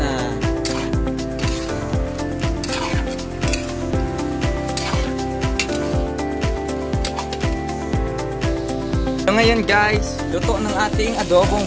So ngayon guys, luto ng ating adobong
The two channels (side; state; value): both; identical; correlation 1.00